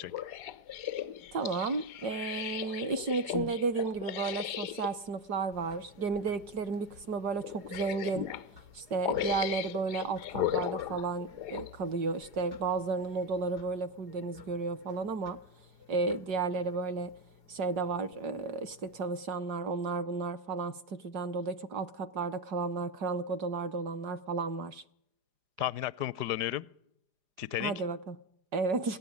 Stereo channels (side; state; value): left; late; 4.9 ms